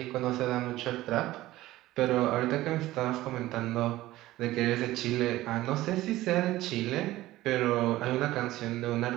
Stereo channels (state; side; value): quieter; left; 16.5 dB